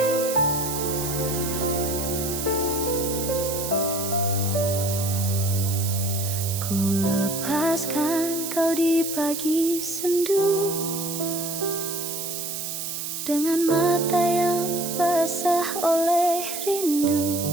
Ku lepaskan kau di pagi sendu, dengan mata yang basah oleh rindu.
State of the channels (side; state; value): right; noise; hiss, 5 dB below the sound